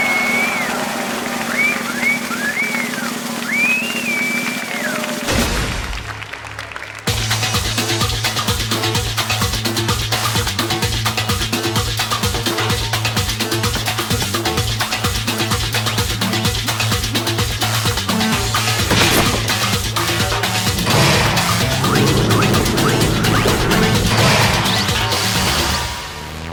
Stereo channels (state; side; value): identical; both; correlation 1.00